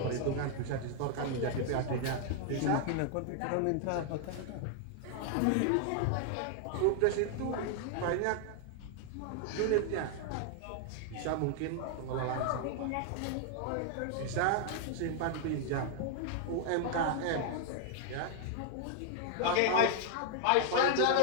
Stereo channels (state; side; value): different; both; correlation 0.00